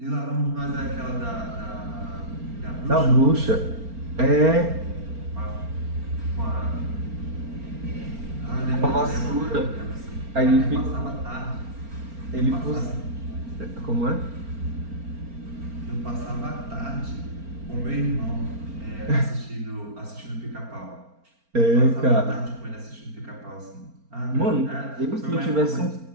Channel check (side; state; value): left; late; 4.4 ms